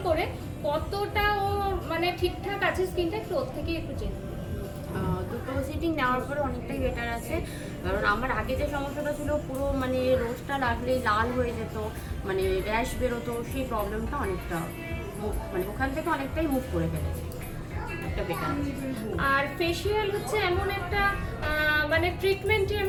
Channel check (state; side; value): identical; both; correlation 1.00